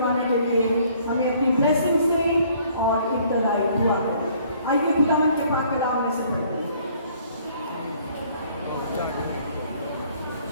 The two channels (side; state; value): both; inverted; correlation -0.60